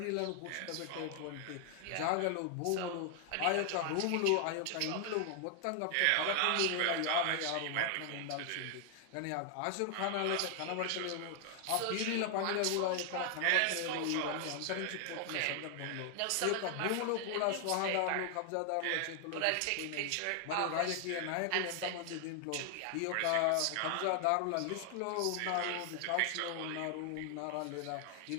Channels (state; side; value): different; both; correlation 0.00